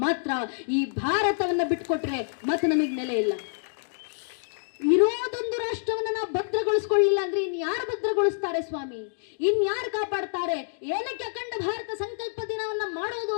ಮಾತ್ರ. ಈ ಭಾರತವನ್ನ ಬಿಟ್ಕೊಟ್ರೆ ಮತ್ತೆ ನಮಗೆ ನೆಲೆ ಇಲ್ಲ. ಇರೋದೊಂದು ರಾಷ್ಟ್ರವನ್ನ ನಾವು ಭದ್ರಗೊಳಿಸ್ಕೊಳ್ಳಿಲ್ಲ ಅಂದ್ರೆ ಇನ್ಯಾರು ಭದ್ರಗೊಳಿಸ್ತಾರೆ ಸ್ವಾಮಿ? ಇನ್ಯಾರು ಕಾಪಾಡ್ತಾರೆ? ಏನಕ್ಕೆ ಅಖಂಡ ಭಾರತ ಸಂಕಲ್ಪ ದಿನವನ್ನ ಮಾಡೋದು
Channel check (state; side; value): silent; right; digital silence